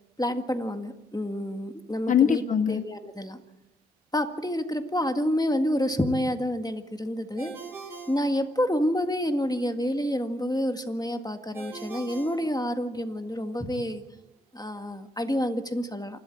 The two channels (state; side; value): normal; both; correlation 0.77